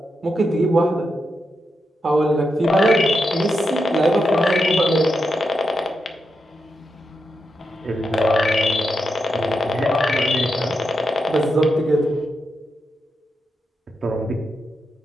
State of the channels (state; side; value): normal; both; correlation 0.86